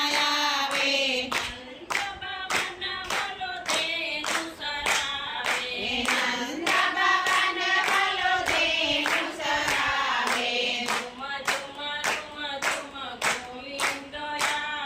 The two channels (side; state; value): both; identical; correlation 1.00